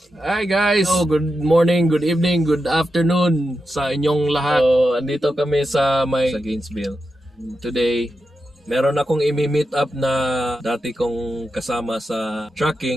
Hi guys! Good morning, good evening, good afternoon sa inyong lahat. So, andito kami sa Gainesville. Today, meron akong imi-meet up na dati kong kasama sa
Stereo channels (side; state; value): both; normal; correlation 0.88